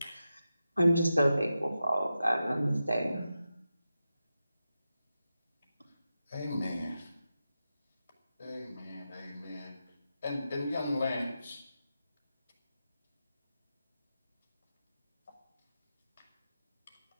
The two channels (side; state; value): both; inverted; correlation -0.90